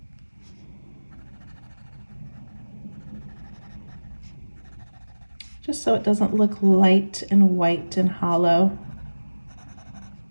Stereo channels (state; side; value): inverted; both; correlation -1.00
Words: Just so it doesn't look light and white and hollow.